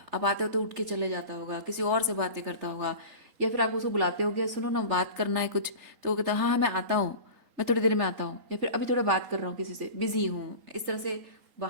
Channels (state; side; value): late; left; 3.8 ms